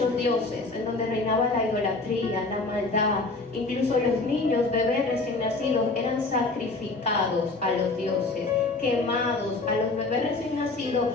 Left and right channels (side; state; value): right; quieter; 3.4 dB